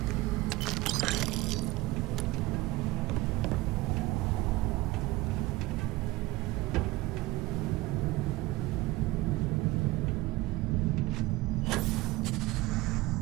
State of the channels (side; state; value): left; quieter; 19.7 dB